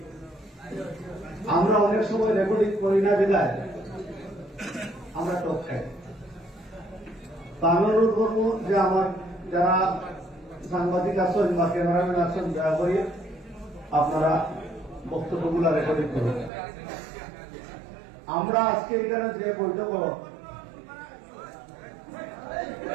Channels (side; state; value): left; drops out; at 16.5 s